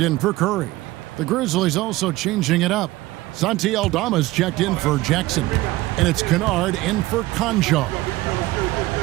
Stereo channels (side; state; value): left; quieter; 18.4 dB